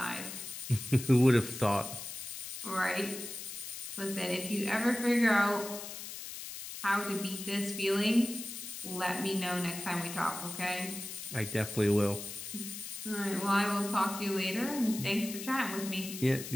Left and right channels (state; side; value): noise; left; hiss, 9 dB below the sound